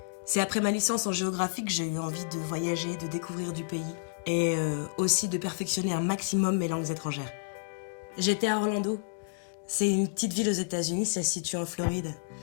C'est après ma licence en géographie que j'ai eu envie de voyager, de découvrir du pays et aussi de perfectionner un maximum mes langues étrangères. J'étais à Orlando. C'est une petite ville aux États-Unis, ça se situe en Floride.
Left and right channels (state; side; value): silent; right; digital silence